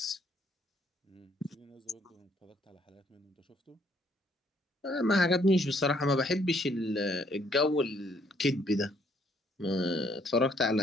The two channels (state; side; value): normal; both; correlation 0.66